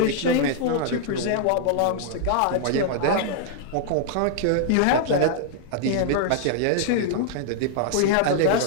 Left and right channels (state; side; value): different; both; correlation -0.01